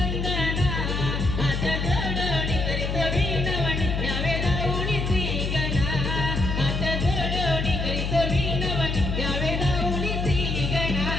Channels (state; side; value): noise; left; hum, 1 dB below the sound